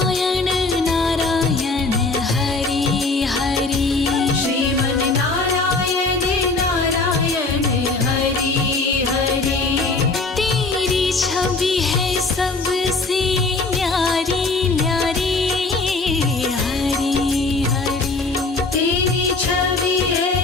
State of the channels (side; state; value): right; quieter; 3.6 dB